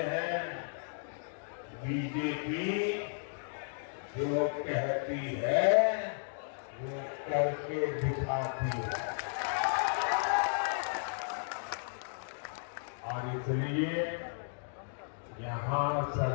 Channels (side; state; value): right; silent; digital silence